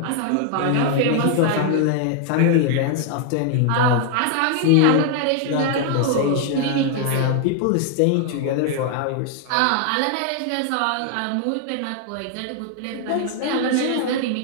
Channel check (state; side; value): different; both; correlation 0.00